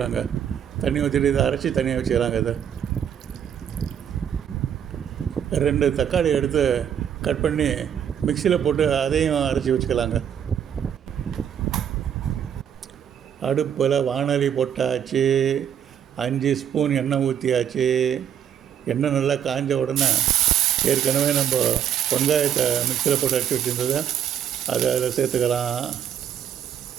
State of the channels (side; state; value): left; quieter; 9.0 dB